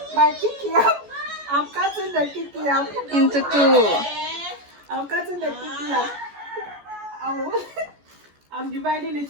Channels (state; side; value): late; left; 14 ms